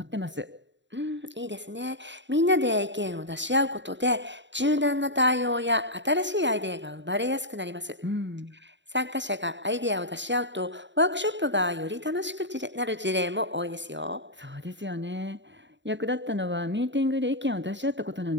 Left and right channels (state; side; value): late; left; 0.53 ms